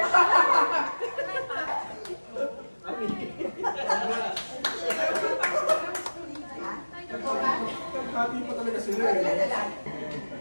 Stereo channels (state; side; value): inverted; both; correlation -1.00